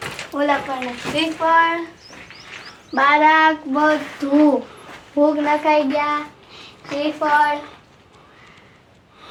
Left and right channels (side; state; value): both; identical; correlation 1.00